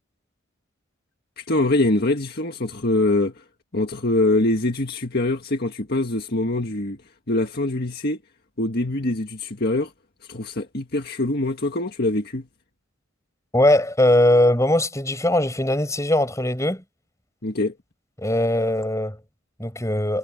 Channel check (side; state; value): both; normal; correlation 0.57